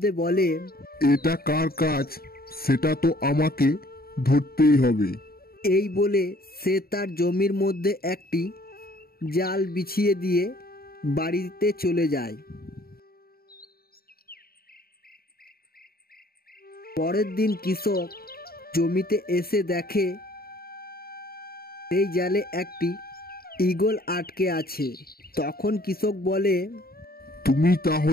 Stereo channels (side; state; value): right; late; 0.44 ms